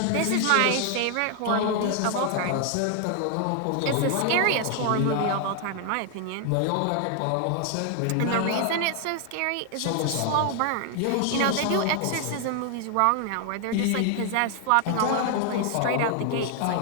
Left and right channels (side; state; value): both; different; correlation 0.00